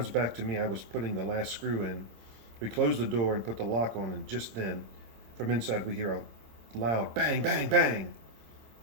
back to me, I was putting the last screw in. We closed the door and put the lock on, and just then, from inside, we hear a loud bang, bang, bang.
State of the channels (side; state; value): left; late; 26 ms